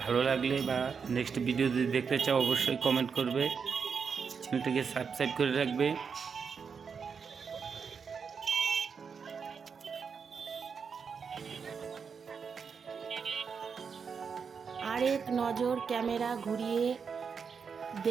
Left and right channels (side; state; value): left; quieter; 6.0 dB